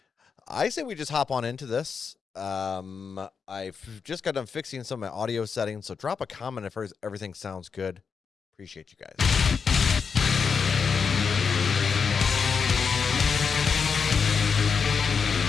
I say we just hop on into this. I've just got done fixing some of my audio settings, so drop a comment if everything sounds good. Appreciate you guys.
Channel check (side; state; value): right; quieter; 5.9 dB